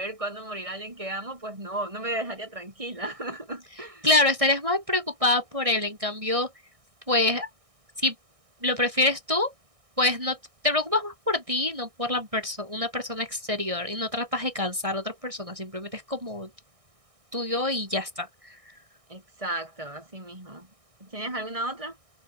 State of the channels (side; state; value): left; late; 1.6 ms